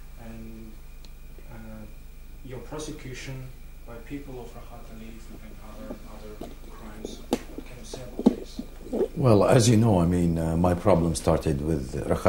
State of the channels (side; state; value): both; identical; correlation 1.00